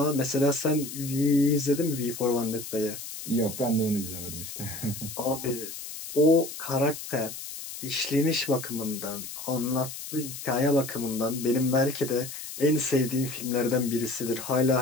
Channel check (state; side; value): noise; left; hiss, 10 dB below the sound